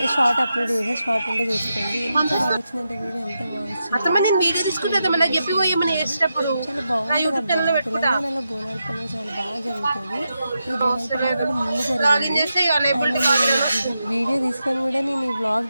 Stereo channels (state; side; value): inverted; both; correlation -0.87